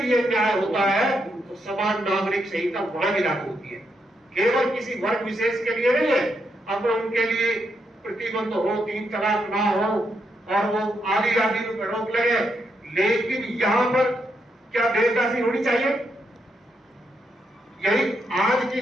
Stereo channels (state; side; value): normal; both; correlation 0.80